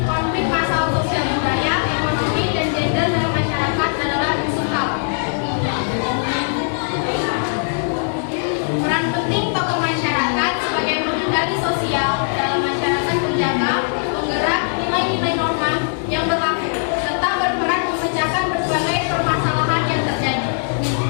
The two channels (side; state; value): right; silent; digital silence